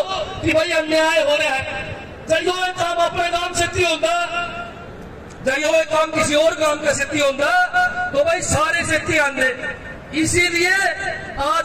कि भाई अन्याय हो रहा है, जो काम अपने गांव से होगा, जो काम किसी और गांव का सिद्धि होगा, तो भाई सारे सिद्धि आंदे। इसीलिए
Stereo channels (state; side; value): identical; both; correlation 1.00